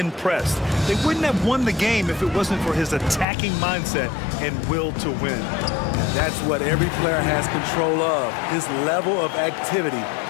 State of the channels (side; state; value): right; drops out; at 3.2 s